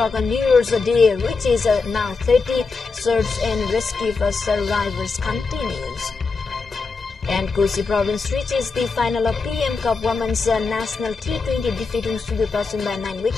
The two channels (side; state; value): right; quieter; 4.4 dB